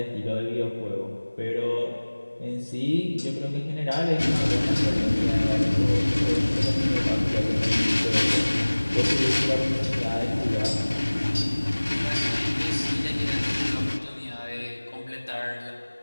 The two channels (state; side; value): inverted; both; correlation -1.00